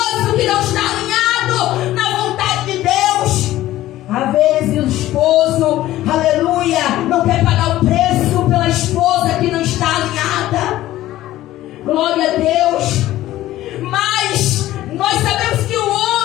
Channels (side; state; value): right; quieter; 14.9 dB